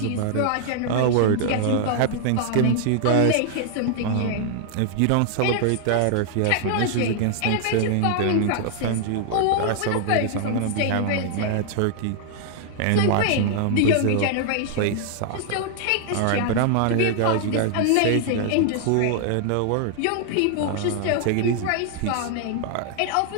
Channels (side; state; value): both; different; correlation -0.01